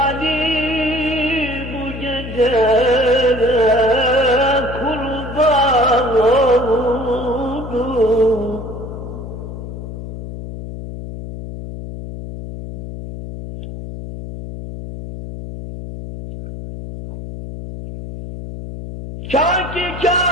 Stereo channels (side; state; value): left; noise; hum, 9 dB below the sound